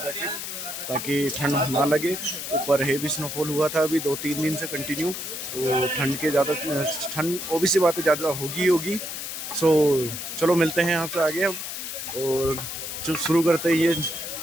ताकि ठंड ना लगे। ऊपर हेवी स्नोफॉल हुआ था अभी 2-3 दिन से कंटिन्यू, तो ठंड ओबीसी बात है ज़्यादा होगी। सो चलो मिलते हैं आपसे आगे अब, और शुरू करते हैं ये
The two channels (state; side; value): noise; left; hiss, 6 dB below the sound